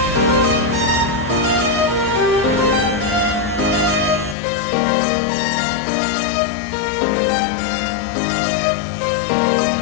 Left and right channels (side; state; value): right; drops out; at 4.4 s